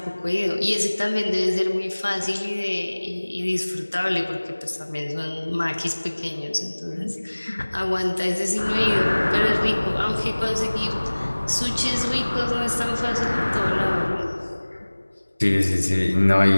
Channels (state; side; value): inverted; both; correlation -1.00